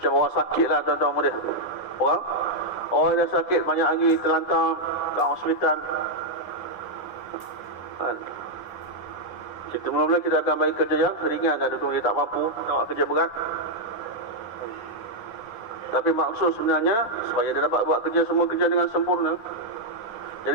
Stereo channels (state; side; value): late; right; 9.6 ms